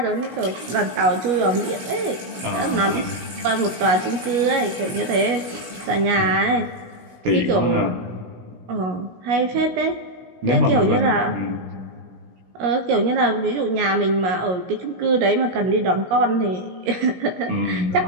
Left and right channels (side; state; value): left; late; 16 ms